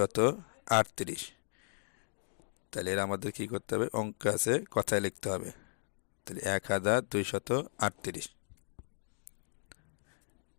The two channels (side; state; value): right; silent; digital silence